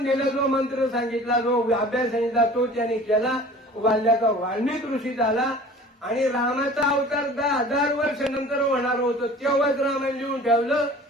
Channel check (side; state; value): both; normal; correlation 0.45